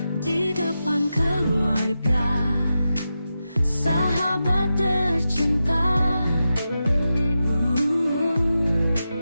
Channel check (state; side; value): inverted; both; correlation -0.90